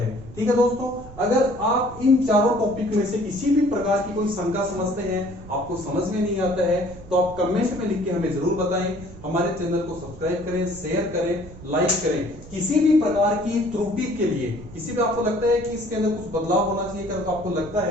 ठीक है दोस्तों, अगर आप इन चारों टॉपिक में से किसी भी प्रकार की कोई शंका समझते हैं, आपको समझ में नहीं आता है, तो आप कमेंट में लिख के हमें जरूर बताएं। हमारे चैनल को सब्सक्राइब करें, शेयर करें, लाइक करें। किसी भी प्रकार की त्रुटि के लिए, किसी भी आपको लगता है कि इसके अंदर कुछ बदलाव होना चाहिए, अगर आपको लगता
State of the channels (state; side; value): noise; right; rumble, 17 dB below the sound